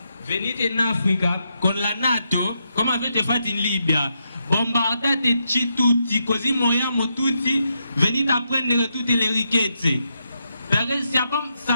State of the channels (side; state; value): both; inverted; correlation -0.82